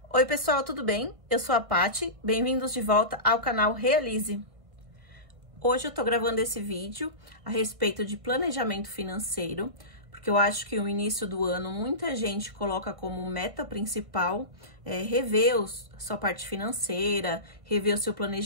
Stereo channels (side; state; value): left; late; 1.7 ms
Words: Oi pessoal, tudo bem? Eu sou a Paty, bem-vindos de volta ao canal Realize. Hoje eu tô gravando esse vídeo a respeito de planejamento financeiro, porque eu acho que no início do ano muita gente coloca como meta principal rever sua parte financeira, rever o seu